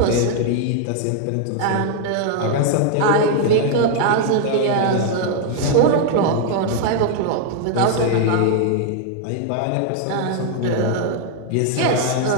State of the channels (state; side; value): different; both; correlation 0.00